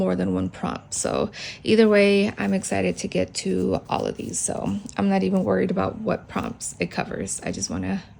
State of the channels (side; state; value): both; identical; correlation 1.00